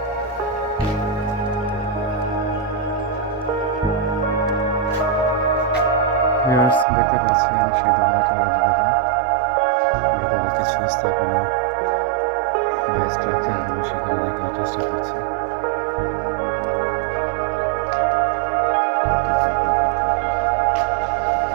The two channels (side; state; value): left; drops out; at 6.9 s